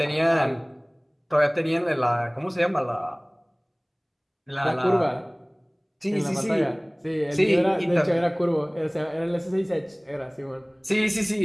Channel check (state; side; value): identical; both; correlation 1.00